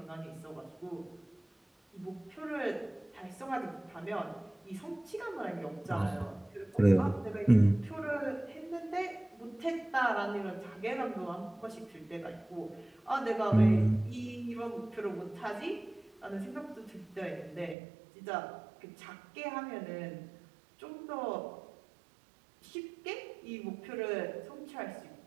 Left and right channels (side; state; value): left; drops out; at 17.8 s